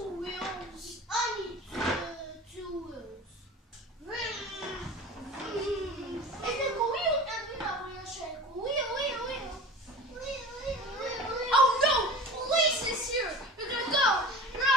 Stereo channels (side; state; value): both; normal; correlation 0.37